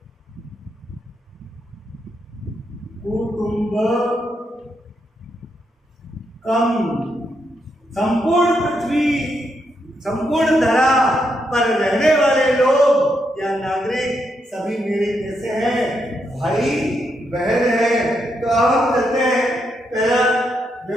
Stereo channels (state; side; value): normal; both; correlation 0.80